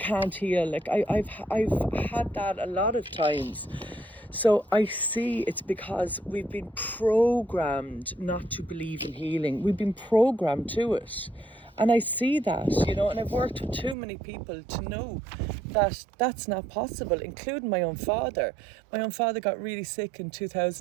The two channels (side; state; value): left; drops out; at 14.0 s